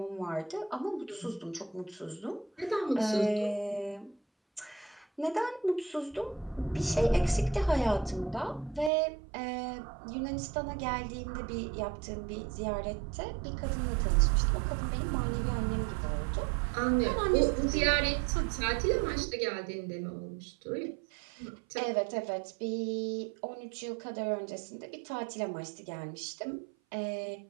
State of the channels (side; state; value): left; drops out; at 8.9 s